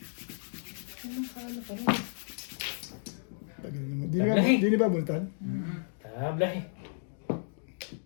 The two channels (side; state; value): right; silent; digital silence